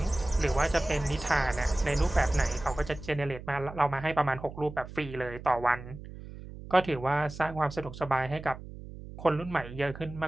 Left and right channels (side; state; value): right; noise; hum, 13 dB below the sound